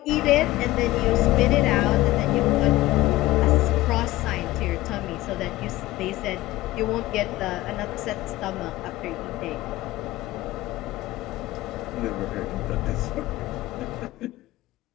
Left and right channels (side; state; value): right; quieter; 17.3 dB